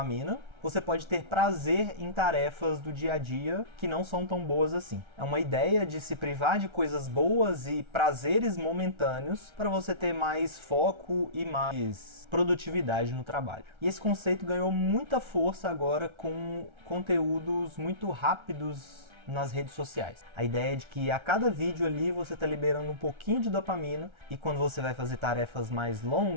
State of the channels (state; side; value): late; left; 1.3 ms